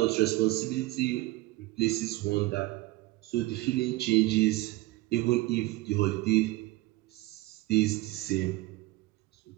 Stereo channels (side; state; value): left; quieter; 19.3 dB